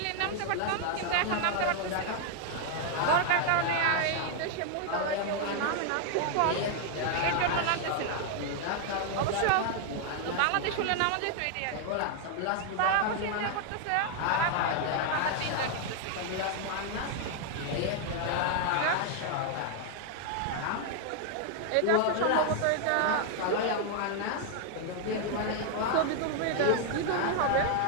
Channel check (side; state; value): both; different; correlation 0.00